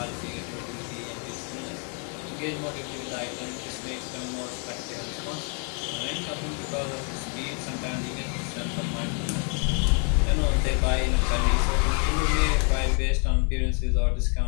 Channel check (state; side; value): quieter; right; 37.9 dB